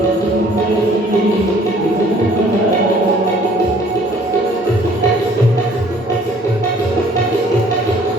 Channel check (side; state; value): both; normal; correlation 0.57